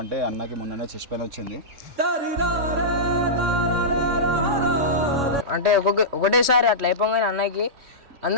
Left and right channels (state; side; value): late; left; 3.1 ms